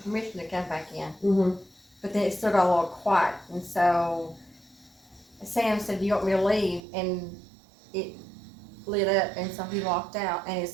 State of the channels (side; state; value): left; drops out; at 6.8 s